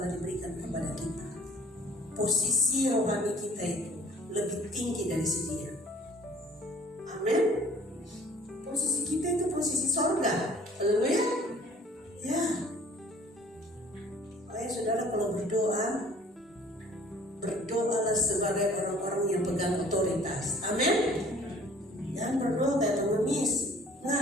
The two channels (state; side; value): normal; both; correlation 0.52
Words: diberikan kepada kita. Posisi rohani kita itu lebih tinggi dari si dia. Amin. Posisi kita itu posisi sorga. Haleluya. Ya. Baik saudara, kalau berdoa, berdoalah sebagai orang-orang yang pegang otoritas. Amin. Jangan berdoa kayak pengemis.